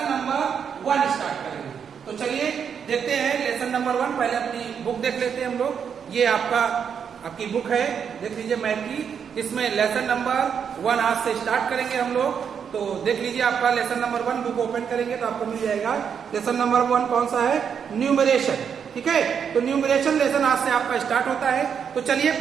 नंबर 1 स्टार्ट करेंगे। तो चलिए देखते हैं लेसन नंबर 1। पहले अपनी बुक देख लेते हैं हम लोग। ये आपकी बुक है, देख लीजिए मैथ की। इसमें लेसन नंबर 1 आज से स्टार्ट करेंगे हम लोग। तो देख लीजिए आपका लेसन नंबर 1 बुक ओपन करेंगे तो आपको मिल जाएगा। लेसन नंबर 1 कौन सा है? न्यूमरेशन। ठीक है, तो न्यूमरेशन लेसन आज से आपका स्टार्ट होता है। तो चलिए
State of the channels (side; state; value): left; quieter; 7.3 dB